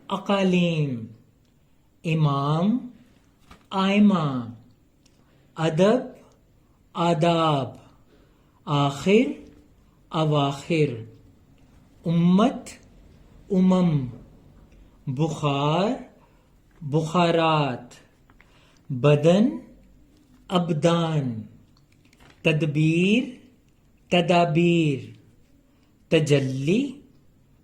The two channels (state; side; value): identical; both; correlation 1.00